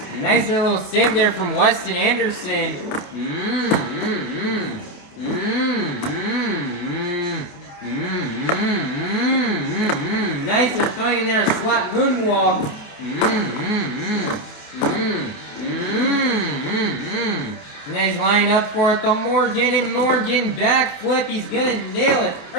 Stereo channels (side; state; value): right; late; 28 ms